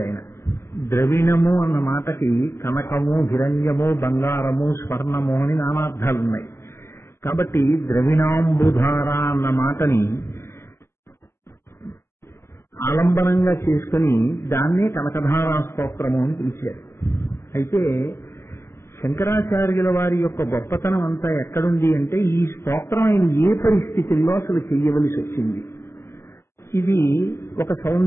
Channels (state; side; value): late; right; 0.12 ms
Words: ఆయన. ద్రవిణము అన్న మాటకి కనకము, హిరణ్యము, బంగారము, స్వర్ణము అని నానార్థాలున్నాయి. కాబట్టి ద్రవిణాంబుధార అన్న మాటని ఆలంబనంగా చేసుకుని దాన్నే కనకధారా స్తోత్రము అని పిలిచారు. అయితే శంకరాచార్యుల వారి యొక్క గొప్పతనం అంతా ఎక్కడుంది అంటే, ఈ స్తోత్రం ఆయన ఏ పరిస్థితుల్లో అసలు చెయ్యవలసి వచ్చింది. ఇది ఒక